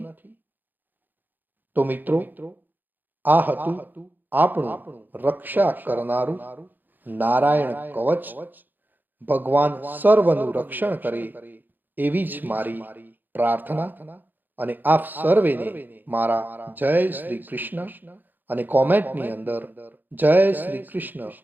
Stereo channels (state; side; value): late; left; 0.088 ms